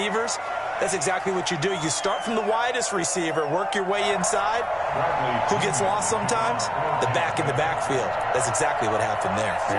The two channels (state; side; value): identical; both; correlation 1.00